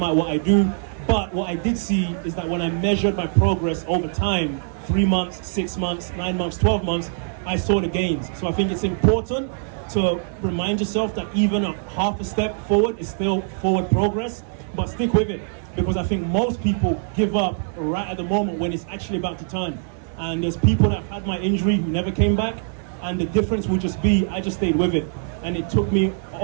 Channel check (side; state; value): left; silent; 64 dB below the other